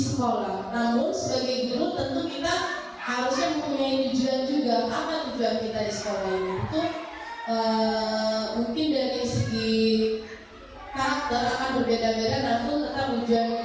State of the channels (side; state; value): both; identical; correlation 1.00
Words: sekolah. Namun sebagai guru tentu kita harusnya mempunyai tujuan juga. Apa tujuan kita di sekolah ini? Itu mungkin dari segi karakter akan berbeda-beda, namun tetap tujuan